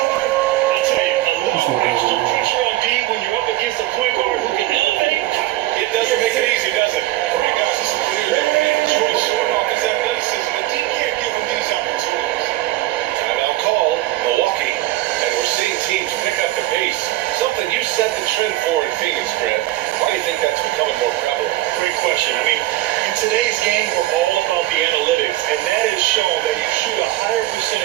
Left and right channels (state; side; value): quieter; left; 16.2 dB